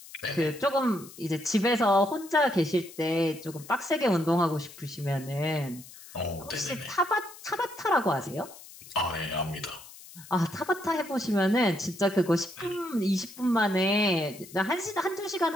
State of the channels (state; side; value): noise; left; hiss, 18 dB below the sound